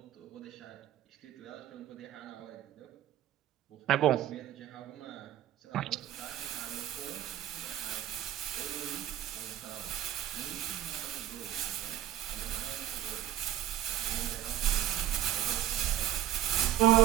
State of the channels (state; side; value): quieter; left; 12.9 dB